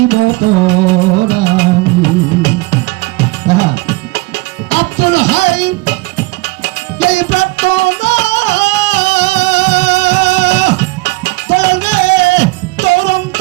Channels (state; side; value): quieter; left; 23.3 dB